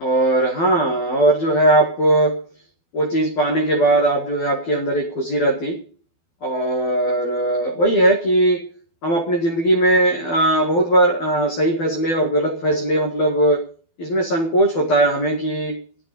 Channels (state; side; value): late; right; 12 ms